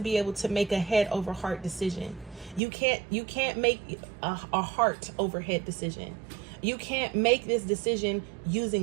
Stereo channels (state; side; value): drops out; left; at 2.6 s